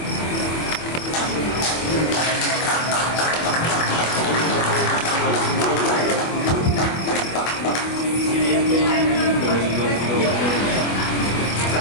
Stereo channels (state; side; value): late; right; 24 ms